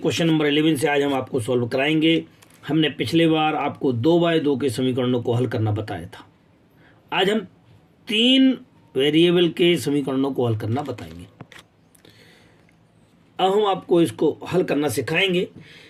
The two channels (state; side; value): identical; both; correlation 1.00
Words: नंबर 11 से आज हम आपको सॉल्व कराएंगे। हमने पिछले बार आपको 2x2 के समीकरणों को हल करना बताया था। आज हम 3 वेरिएबल के समीकरणों को हल करना बताएंगे। अब हम आपको इसको हल करना सिखाएंगे।